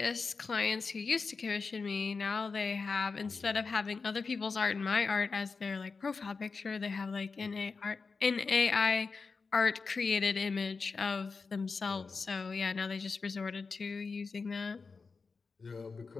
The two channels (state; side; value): quieter; right; 4.6 dB